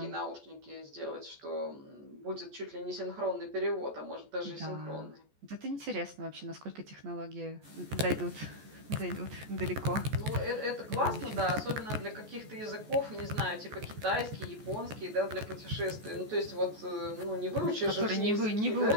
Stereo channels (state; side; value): late; left; 14 ms